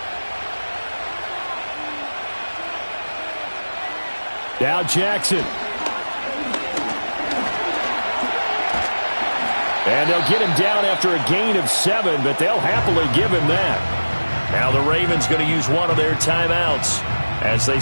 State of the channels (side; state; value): both; inverted; correlation -1.00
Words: Now Jackson. And they'll get him down after a gain of 7, but they'll happily give him that. Now the Ravens going to use one of their timeouts as they